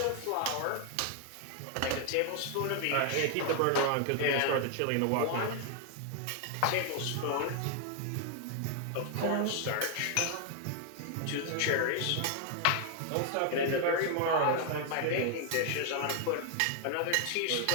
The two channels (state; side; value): different; both; correlation 0.00